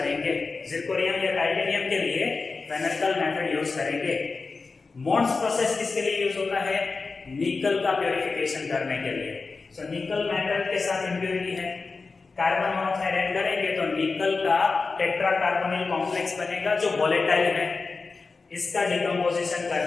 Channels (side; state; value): right; quieter; 4.2 dB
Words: जिरकोनियम या टाइटेनियम के लिए वैन आर्कल मेथड यूज करेंगे। मोड्स प्रोसेस किसके लिए यूज होता है? निकल का प्योरिफिकेशन करने के लिए। सो निकल मेटल के साथ इंप्योरिटी है, कार्बन मोनोऑक्साइड ऐड करेंगे तो निकल का टेट्रा कार्बोनिल कॉम्प्लेक्स बनेगा जो वोलेटाइल है, इसका डिकम्पोजिशन